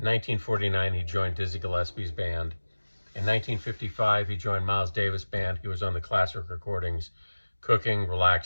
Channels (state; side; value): inverted; both; correlation -1.00